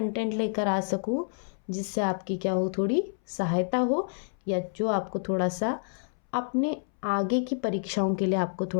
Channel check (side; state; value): right; silent; 59 dB below the other